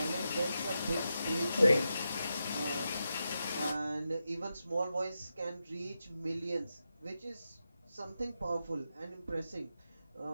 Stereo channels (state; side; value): inverted; both; correlation -0.88